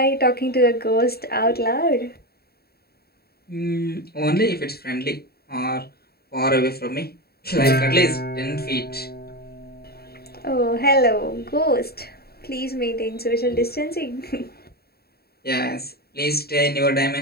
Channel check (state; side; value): late; right; 0.45 ms